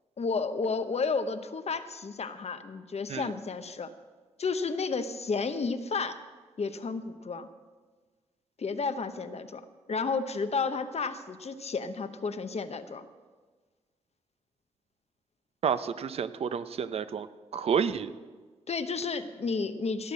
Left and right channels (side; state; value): both; normal; correlation 0.42